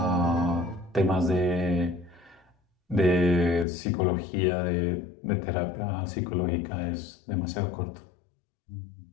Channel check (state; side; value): drops out; right; at 3.7 s